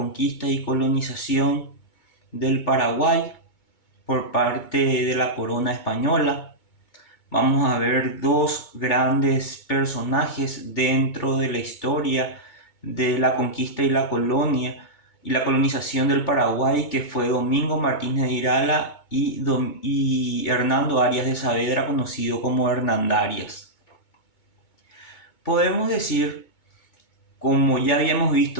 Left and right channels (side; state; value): right; late; 2.2 ms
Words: y colonización del Paraguay por parte de la corona española. Vamos a ver dos grandes personajes dentro de la historia de la conquista y la colonia y la colonización del Paraguay, que fue Domingo Martínez de Irala y Hernando Arias de Saavedra, conocido como Hernandarias. Podemos decir, como ya habíamos